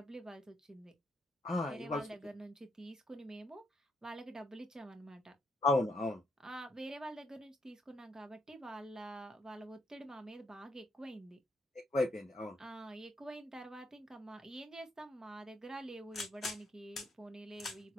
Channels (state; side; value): normal; both; correlation 0.75